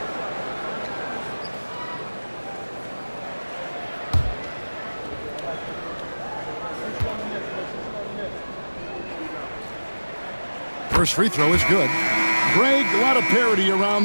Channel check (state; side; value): inverted; both; correlation -1.00